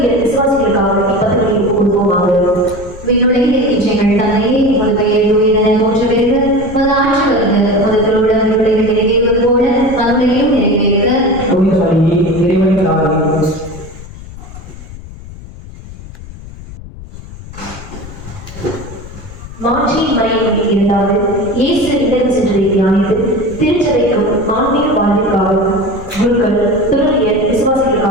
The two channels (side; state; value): left; noise; rumble, 15 dB below the sound